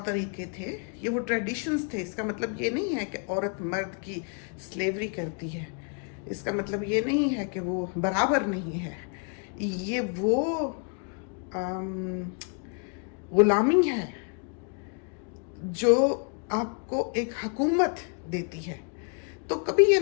तरीके थे, ये वो ट्रेडिशंस थे। इसका मतलब ये नहीं है कि औरत मर्द की स्लेवरी करती है, इसका मतलब ये नहीं है कि वो बराबर नहीं है। ये वो गुलामी है जो आपको एक हुकूमत देती है। तो कभी ये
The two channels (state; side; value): quieter; right; 39.8 dB